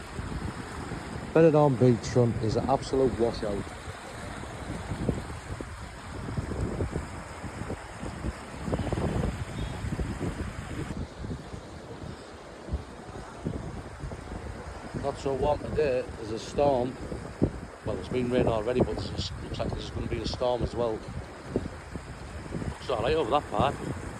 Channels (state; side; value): identical; both; correlation 1.00